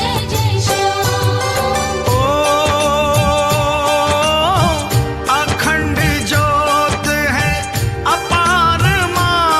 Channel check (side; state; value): both; identical; correlation 1.00